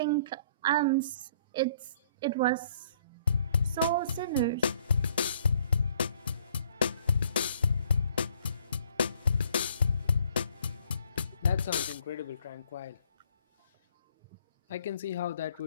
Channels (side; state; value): both; inverted; correlation -0.62